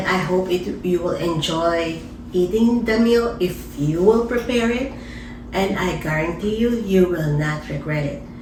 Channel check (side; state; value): both; identical; correlation 1.00